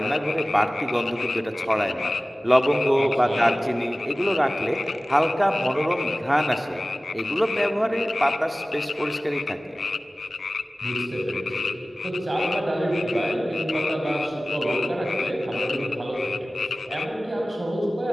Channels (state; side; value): normal; both; correlation 0.97